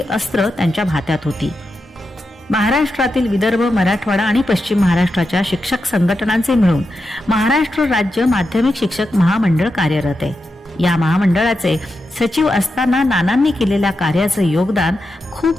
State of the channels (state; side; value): normal; both; correlation 0.88